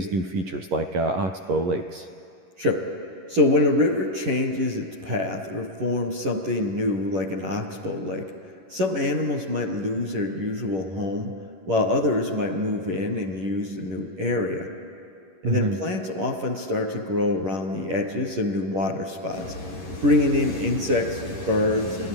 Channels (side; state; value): left; late; 11 ms